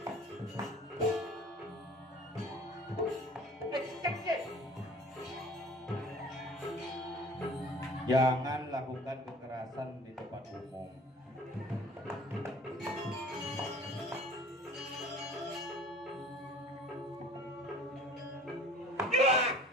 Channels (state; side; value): normal; both; correlation 0.47